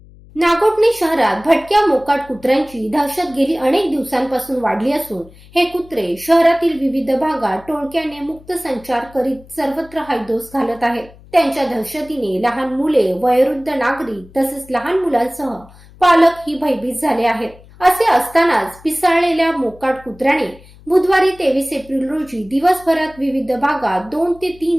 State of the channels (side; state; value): left; noise; hum, 23 dB below the sound